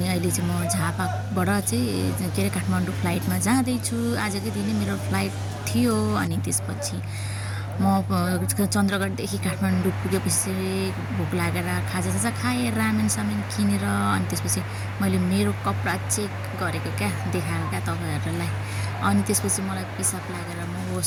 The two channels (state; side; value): identical; both; correlation 1.00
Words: अहिले चाहिँ म झापाबाट चाहिँ के अरे काठमाडौँ फ्लाइटमा जाँदैछु। आजकै दिनै मेरो फ्लाइट थियो। अनि त्यसपछि म चन्द्रगढदेखि काठमाडौँ पुगेपछि भोक लागेर खाजासाजा खाएँ, रामेन सामेन किनेर। अनि त्यसपछि मैले मेरो कपडा चेक गरेको क्या, देखाएको क्या तपाईँहरूलाई। अनि त्यसपछि मलाई पिसाब लागेर म